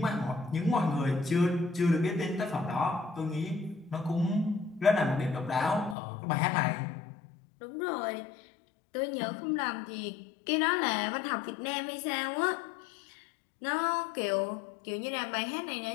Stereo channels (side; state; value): right; drops out; at 6.0 s